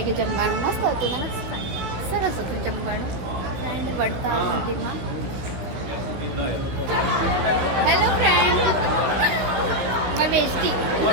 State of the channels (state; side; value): late; left; 16 ms